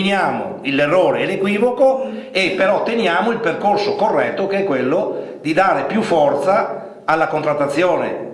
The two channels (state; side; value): identical; both; correlation 1.00